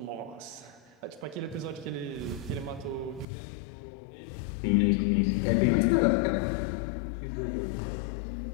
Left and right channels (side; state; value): right; drops out; at 3.2 s